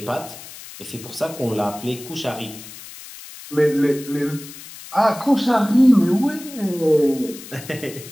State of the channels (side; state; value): left; noise; hiss, 15 dB below the sound